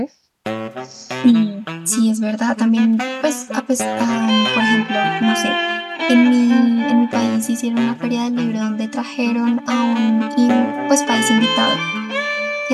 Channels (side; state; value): both; identical; correlation 1.00